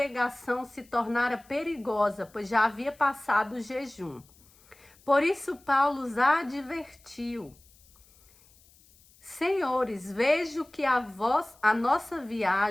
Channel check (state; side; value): noise; left; hiss, 28 dB below the sound